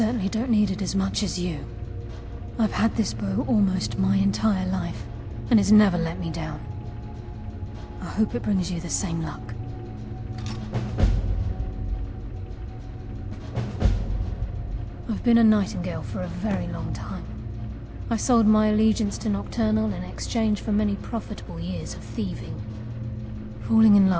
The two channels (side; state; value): both; identical; correlation 1.00